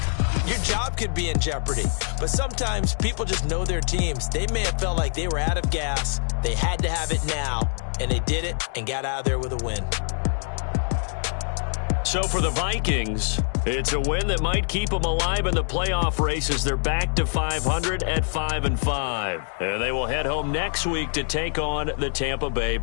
Your job could be in jeopardy. But sometimes people just know their teams. They may have felt like they were out of gas. They had to have it now. And they did it and got out of there with a win. So for the Vikings, it's a win that might keep them alive in the playoff race as they're back to 500 at 5-5. And they will head home next week to take on the Tampa Bay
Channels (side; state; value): right; silent; digital silence